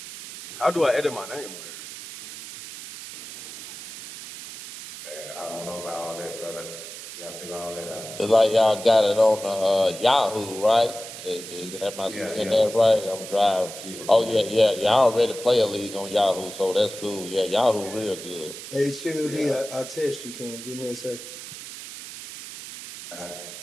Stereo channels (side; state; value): right; noise; hiss, 12 dB below the sound